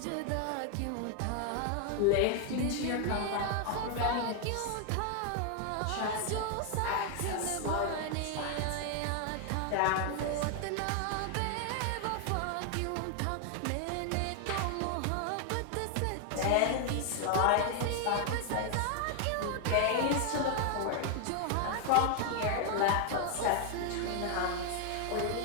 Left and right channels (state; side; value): different; both; correlation 0.00